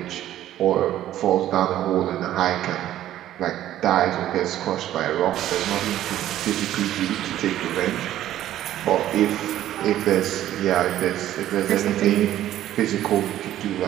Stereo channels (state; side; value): quieter; left; 12.8 dB